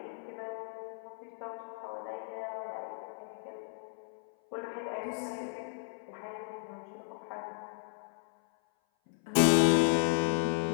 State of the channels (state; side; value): silent; right; 55 dB below the other